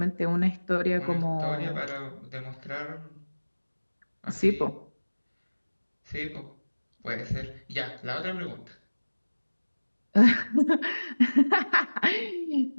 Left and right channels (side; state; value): both; inverted; correlation -1.00